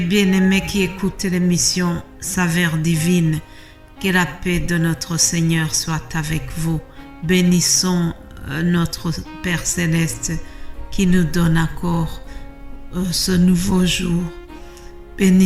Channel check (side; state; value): both; identical; correlation 1.00